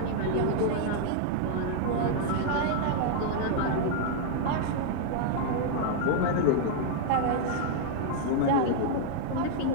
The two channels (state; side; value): different; both; correlation -0.01